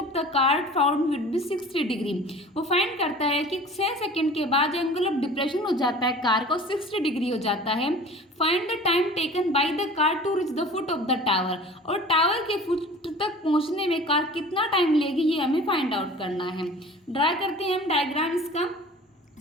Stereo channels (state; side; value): normal; both; correlation 0.43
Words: the car found would be 60 degree. वो फाइंड करता है कि 6 सेकेंड के बाद एंगल ऑफ डिप्रेशन हो जाता है कार का 60 डिग्री हो जाता है। Find the time taken by the car to reach the foot of the tower. और टावर के फुट तक पहुंचने में कार कितना टाइम लेगी ये हमें फाइंड आउट करना है। ड्रा करते हैं हम डायग्राम इसका।